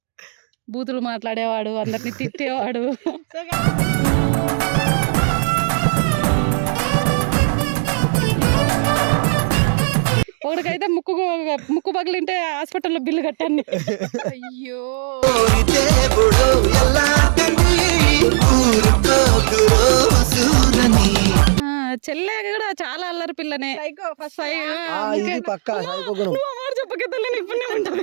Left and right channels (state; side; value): silent; left; digital silence